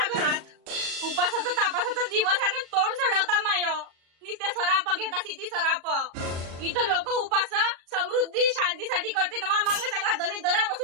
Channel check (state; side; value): late; left; 36 ms